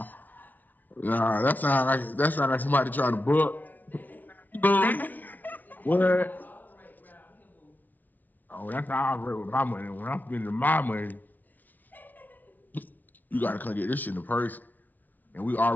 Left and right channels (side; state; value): right; late; 0.080 ms